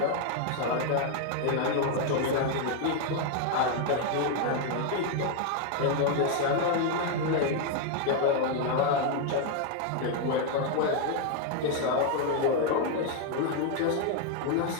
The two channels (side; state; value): both; different; correlation 0.00